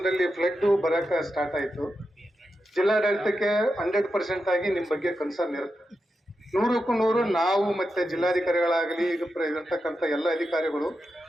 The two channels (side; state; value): both; normal; correlation 0.88